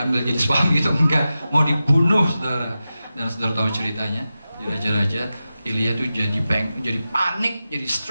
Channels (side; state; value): both; inverted; correlation -0.93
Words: jadi suami gitu, enggak, mau dibunuh, saudara. Dan saudara tahu ceritanya di Raja-Raja, Elia tuh jadi panik, jadi